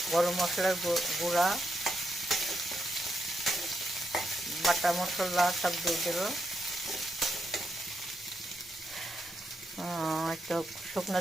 গরম মশলার গুঁড়া, বাটা মশলা সব দিয়ে দেবো। একটু শুকনো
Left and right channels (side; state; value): both; normal; correlation 0.81